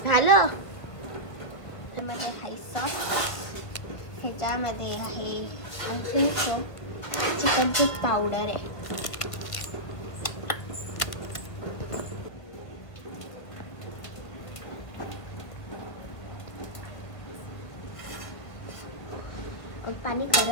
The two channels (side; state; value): right; late; 1.7 ms